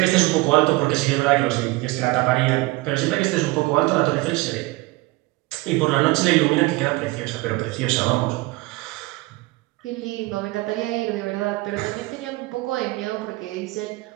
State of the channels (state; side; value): quieter; left; 21.5 dB